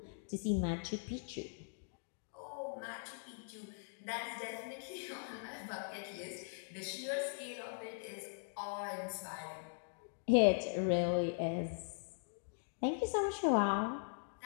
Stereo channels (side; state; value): right; silent; digital silence